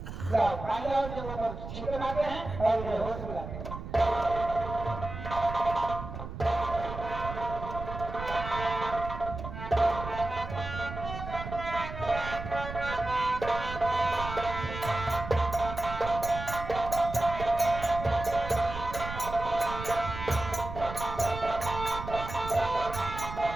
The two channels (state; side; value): noise; right; rumble, 8 dB below the sound